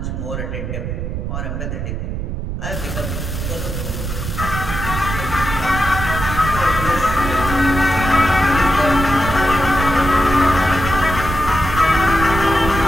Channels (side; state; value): right; noise; rumble, 4 dB below the sound